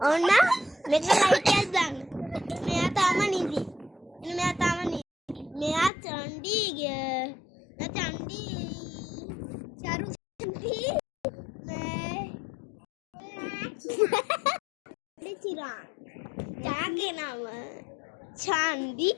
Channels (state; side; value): drops out; right; at 5.9 s